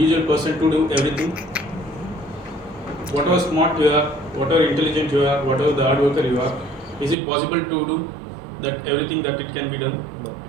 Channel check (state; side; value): drops out; left; at 7.2 s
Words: person to do everything? Whatever smart you are, whatever intelligent you are, whatever the hard worker you are, is it possible to do that everything that it can be done?